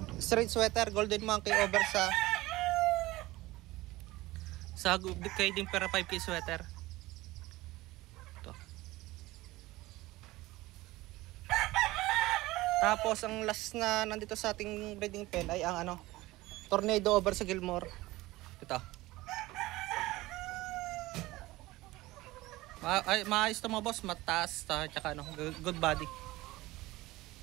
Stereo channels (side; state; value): left; quieter; 19.0 dB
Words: straight sweater Golden Monkey over sa kay din para 5K sweater. Ito. Tapos ang last na nandito sa ating breeding pen ay ang Tornado over sa Gilmore. Ito. Maayos to mga boss, mataas tsaka good body.